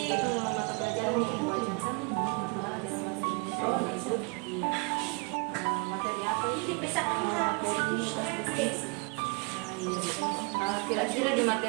mata pelajaran yang diwajarkan pelajaran bahasa Indonesia ya Ibu. Iya. Materi apa ini? Kira-kira di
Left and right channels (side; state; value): left; quieter; 32.9 dB